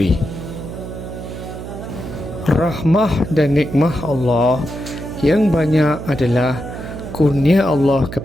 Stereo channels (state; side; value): noise; right; hum, 9 dB below the sound